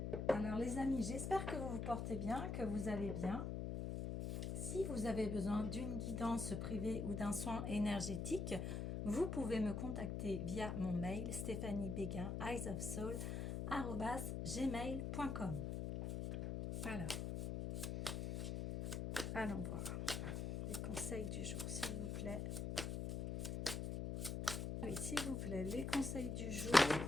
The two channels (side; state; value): left; noise; hum, 2 dB below the sound